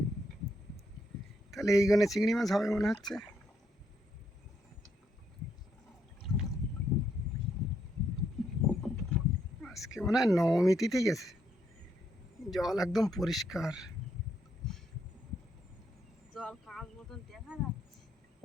তাহলে এইখানে চিংড়ি মাছ হবে মনে হচ্ছে। আজকে মনে হয় নবমী তিথি গেছে, জল একদম পরিষ্কার। জল কাঁচ মতন দেখা যাচ্ছে।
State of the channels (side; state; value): both; normal; correlation 0.76